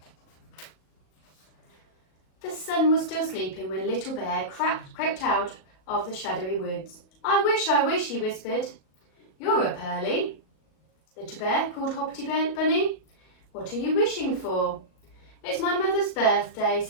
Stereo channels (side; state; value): right; late; 38 ms